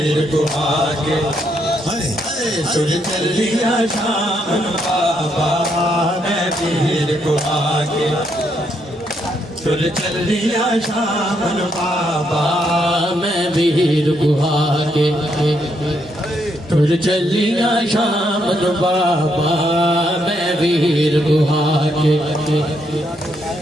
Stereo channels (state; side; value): normal; both; correlation 0.76